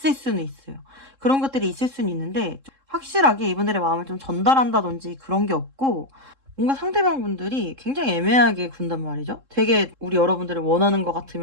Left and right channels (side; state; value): left; late; 3.7 ms